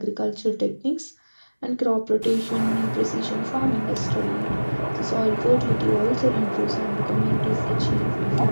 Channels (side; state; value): both; inverted; correlation -1.00